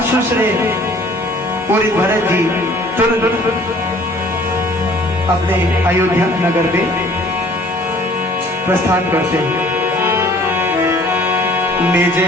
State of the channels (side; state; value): both; normal; correlation 0.54